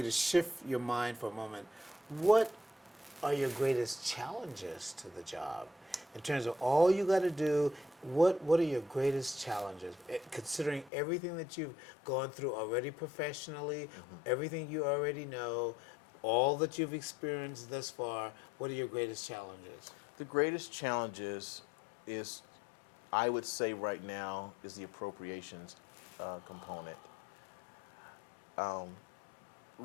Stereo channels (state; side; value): drops out; right; at 10.9 s